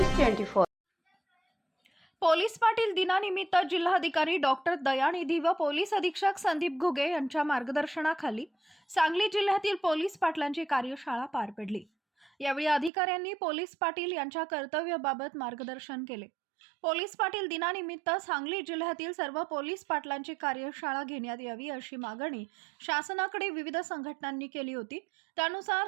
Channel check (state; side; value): drops out; left; at 12.9 s